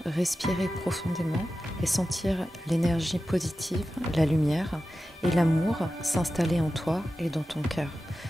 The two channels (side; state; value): both; normal; correlation 0.93